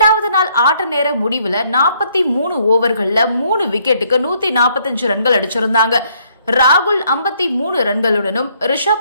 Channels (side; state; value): both; inverted; correlation -0.68